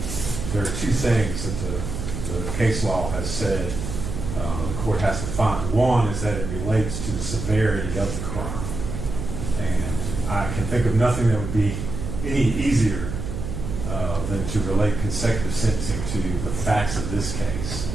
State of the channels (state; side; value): noise; right; hum, 5 dB below the sound